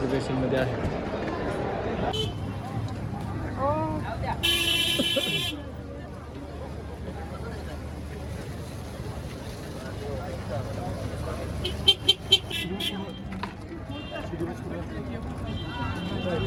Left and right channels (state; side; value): identical; both; correlation 1.00